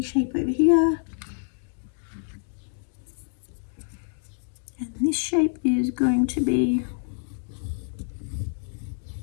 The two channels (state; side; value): silent; right; 60 dB below the other